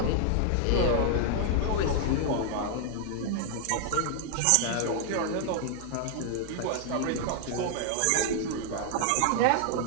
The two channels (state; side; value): different; both; correlation 0.00